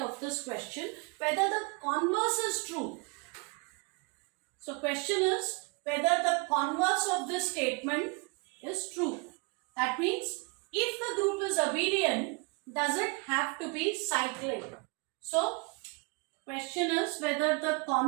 this question, whether the converse is true. So question is whether the converse of this statement is true. That means if the group is abelian, does it have to be cyclic? So question is whether the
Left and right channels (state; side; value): quieter; left; 30.6 dB